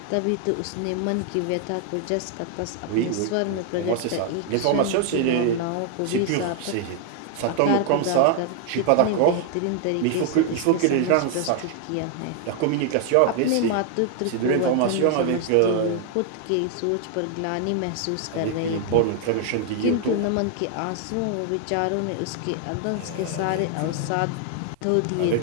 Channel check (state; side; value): different; both; correlation 0.00